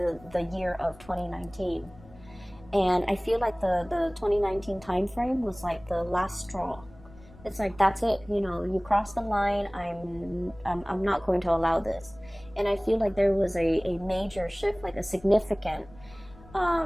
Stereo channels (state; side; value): noise; left; rumble, 22 dB below the sound